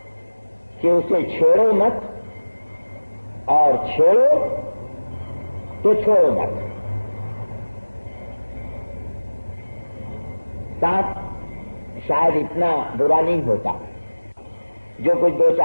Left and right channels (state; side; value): inverted; both; correlation -1.00